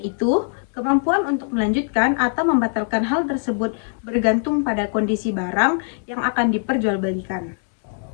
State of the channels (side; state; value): right; silent; digital silence